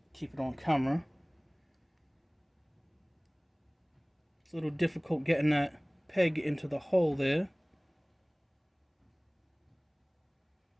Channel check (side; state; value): both; identical; correlation 1.00